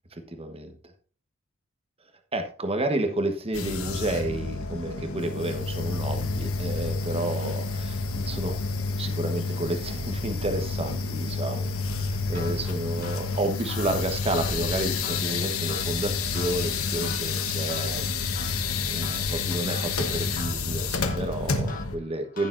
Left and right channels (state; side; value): normal; both; correlation 0.51